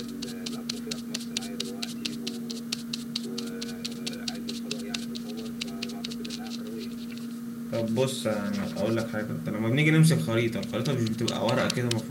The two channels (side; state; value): both; identical; correlation 1.00